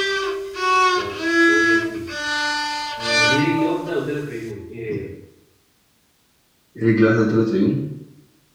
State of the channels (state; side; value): identical; both; correlation 1.00